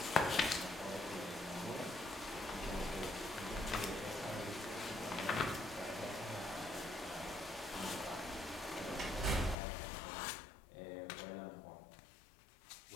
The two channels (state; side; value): drops out; right; at 9.6 s